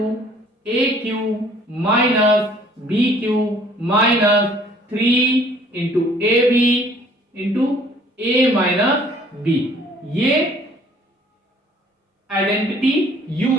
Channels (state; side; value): normal; both; correlation 0.56